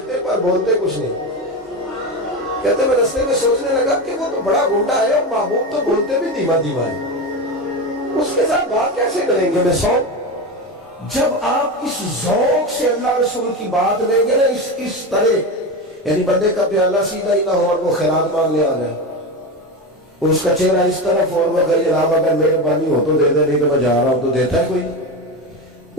پر بولتے کچھ نہیں۔ کہتے ہیں میں رستے میں سوچنے لگا کہ وہ تو بڑا گنڈا ہے اور محبوب تو بولتے بھی دھیما دھیما ہے، اس کے ساتھ بات کیسے کریں گے؟ میں جب آپ اس ذوق سے اللہ رسول کی بات لیں گے نا اس طرح، یعنی بندے کا پیالہ سیدھا ہی نہ ہو اور وہ خیرات مانگنے آ جائے، اور اس کا چہرہ اس طرف اور وہ کہے جناب اگر مہربانی ہو تو دے دے، نہیں تو میں جا رہا ہوں، تو دیتا ہے کوئی؟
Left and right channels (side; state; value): both; normal; correlation 0.20